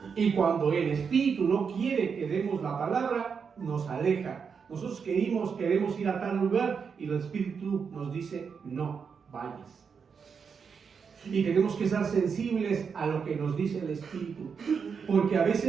Y cuando el Espíritu no quiere que demos la palabra, nos aleja. Nosotros queremos ir a tal lugar y el Espíritu nos dice: no vayas. Y tenemos que estar sensibles a lo que nos dice el Espíritu, porque a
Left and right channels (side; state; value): left; quieter; 6.1 dB